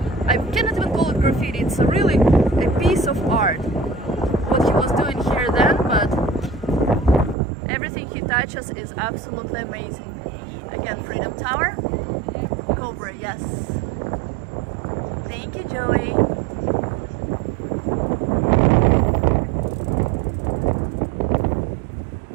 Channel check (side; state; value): left; drops out; at 7.4 s